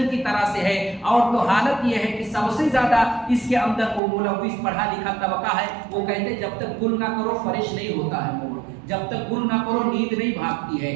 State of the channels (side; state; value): left; drops out; at 4.0 s